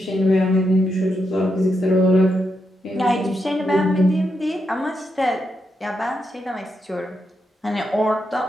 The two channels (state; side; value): normal; both; correlation 0.83